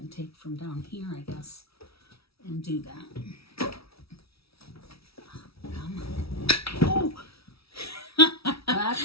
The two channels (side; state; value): right; late; 0.76 ms